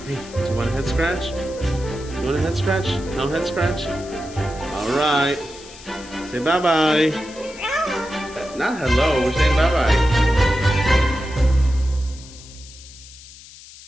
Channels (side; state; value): left; noise; hiss, 19 dB below the sound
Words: Hey, do you want a head scratch? Do you want a head scratch? No head scratch? All right. Say bye-bye. Not hello. We're saying bye-bye.